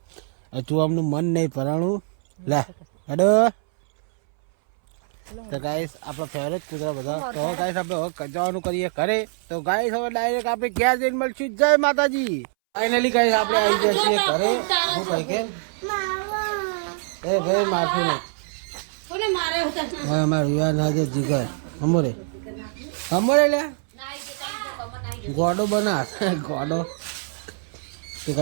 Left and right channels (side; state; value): left; silent; 63 dB below the other